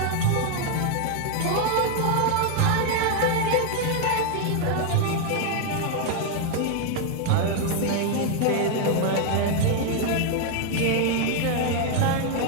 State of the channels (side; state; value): both; different; correlation 0.00